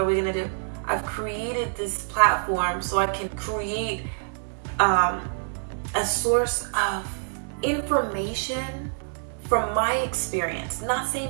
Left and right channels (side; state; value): left; silent; digital silence